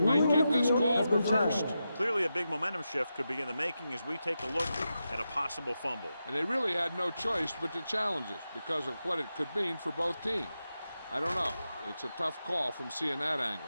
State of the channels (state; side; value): inverted; both; correlation -0.89